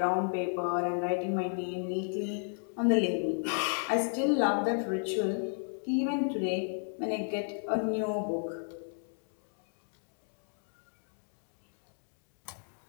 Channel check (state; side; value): silent; right; digital silence